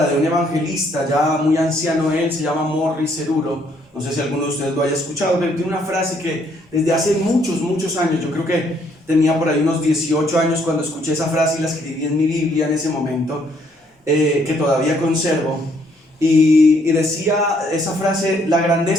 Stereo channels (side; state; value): both; normal; correlation 0.68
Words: de un evangelista ya muy anciano. Él se llama Morris Cerullo. No sé si alguno de ustedes lo haya escuchado, pero tiene una frase que desde hace muchos años, yo creo que tenía por ahí unos 18 años cuando escuché esa frase y la escribí en mi Biblia en ese momento, que todavía conservo. Y decía esa frase: la